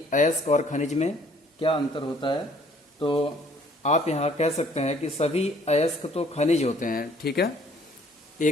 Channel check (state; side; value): normal; both; correlation 0.60